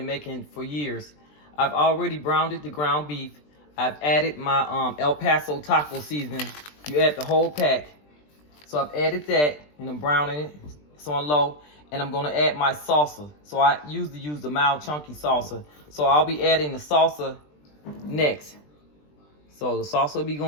making for years. I've already browned the ground beef. I've added my El Paso taco seasoning. You add the whole pack. So I've added that and I'm browning it. It's on low. And I'm gonna add my salsa. So I usually use the mild chunky salsa. So I'll be adding the salsa next. So the salsa will be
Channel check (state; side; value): late; right; 20 ms